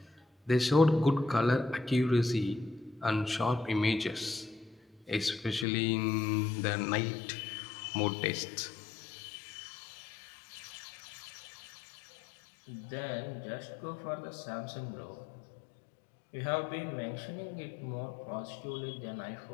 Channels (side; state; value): right; drops out; at 5.7 s